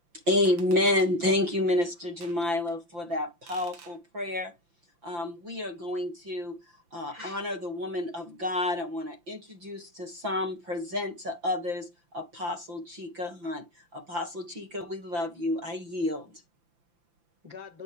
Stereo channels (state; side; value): late; left; 5.8 ms